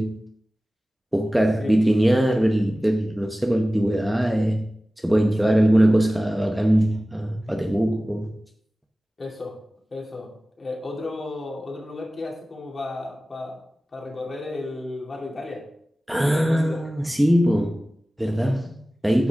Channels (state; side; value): normal; both; correlation 0.97